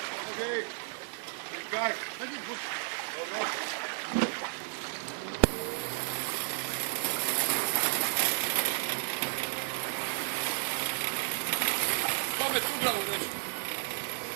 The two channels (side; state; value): left; silent; 56 dB below the other